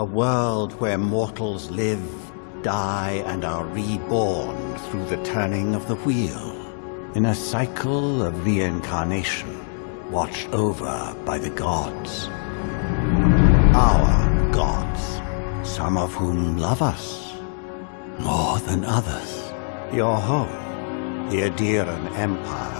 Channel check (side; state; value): right; silent; 62 dB below the other